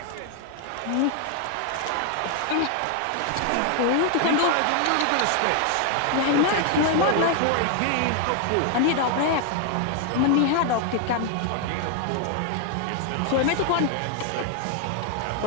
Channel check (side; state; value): both; different; correlation 0.00